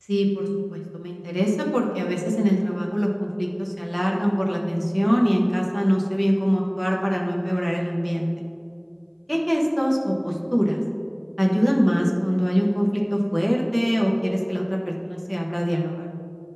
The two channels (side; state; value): both; identical; correlation 1.00